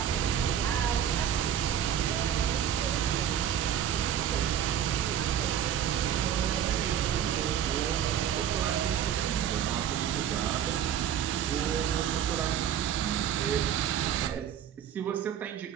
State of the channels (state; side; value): quieter; left; 9.5 dB